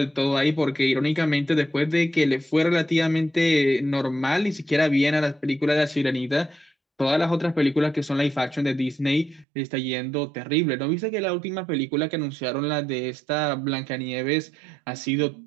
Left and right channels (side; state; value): left; drops out; at 9.5 s